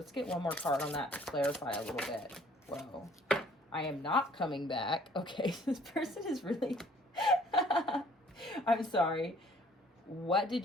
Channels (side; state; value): both; normal; correlation 0.58